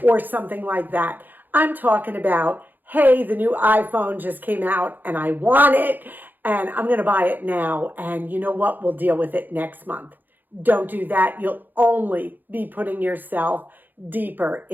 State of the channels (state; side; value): late; left; 0.088 ms